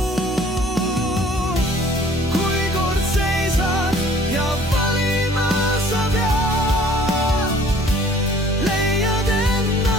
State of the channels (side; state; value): both; normal; correlation 0.54